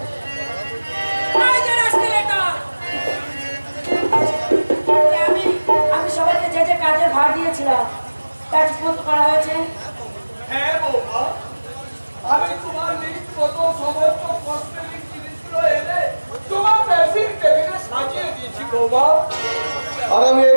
সবাইকে যে যে কাজের ভার দিয়েছিলাম তা ঠিকমতো করা হয়েছে? হ্যাঁ বৌমা, আমি তোমার লিস্ট মতো সমস্ত কসমেটিক জিনিসগুলো এনে তোমার ড্রেসিং টেবিলে সাজিয়ে দিয়েছি বৌমা। আর আমি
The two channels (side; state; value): both; inverted; correlation -1.00